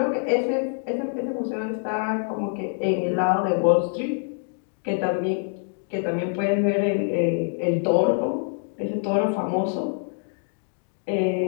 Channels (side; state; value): right; silent; digital silence